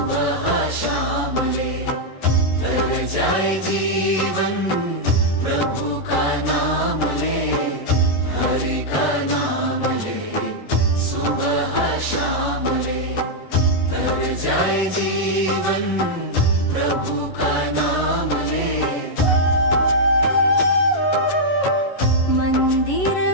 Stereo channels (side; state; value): right; late; 11 ms